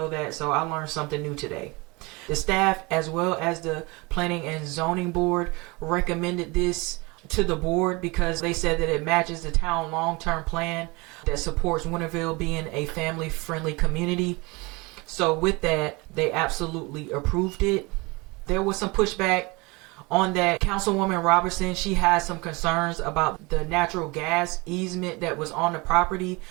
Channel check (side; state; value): left; quieter; 25.7 dB